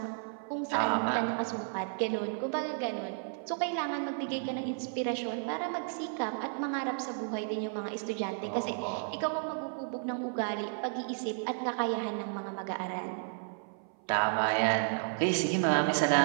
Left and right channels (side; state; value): left; silent; 56 dB below the other